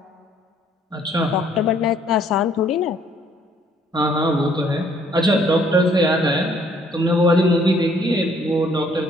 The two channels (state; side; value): normal; both; correlation 0.63